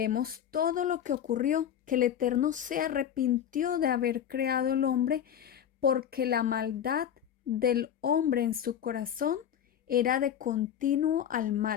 todo lo que ocurrió, que el Eterno se arrepintió de haber creado el hombre porque la maldad del hombre en su corazón era de continuo al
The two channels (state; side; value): quieter; right; 9.5 dB